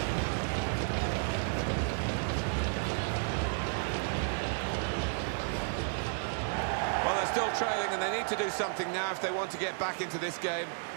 Well, they're still trailing and they need to do something now if they want to get back into this game.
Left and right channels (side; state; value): left; silent; 56 dB below the other